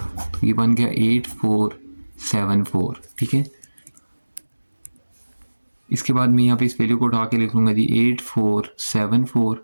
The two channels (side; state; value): both; inverted; correlation -1.00